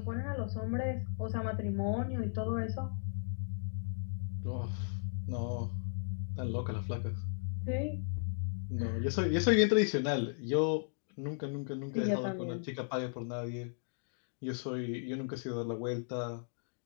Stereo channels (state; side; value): silent; right; digital silence